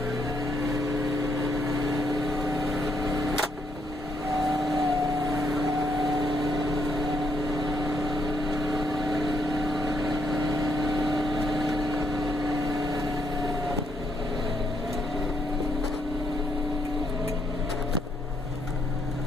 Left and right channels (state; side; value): normal; both; correlation 0.74